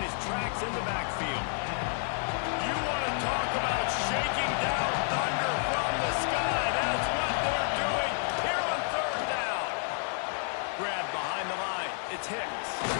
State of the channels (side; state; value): right; silent; 58 dB below the other